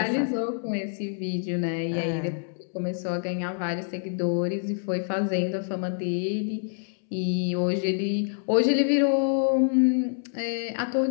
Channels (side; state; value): right; silent; 60 dB below the other